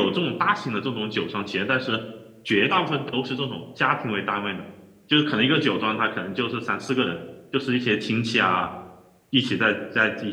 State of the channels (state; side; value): identical; both; correlation 1.00